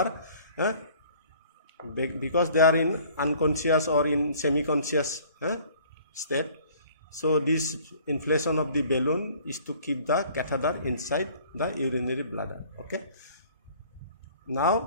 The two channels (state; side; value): inverted; both; correlation -0.53